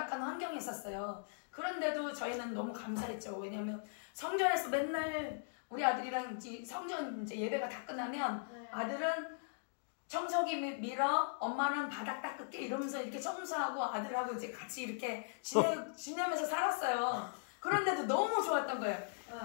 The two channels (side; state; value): right; silent; digital silence